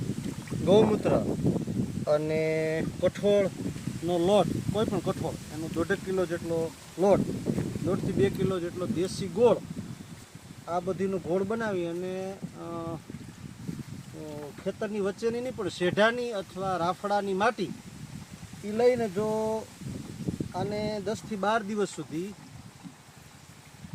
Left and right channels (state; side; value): identical; both; correlation 1.00